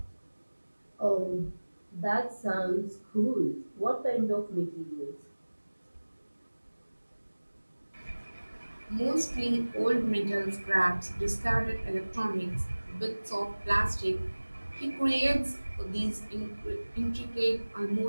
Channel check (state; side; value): inverted; both; correlation -1.00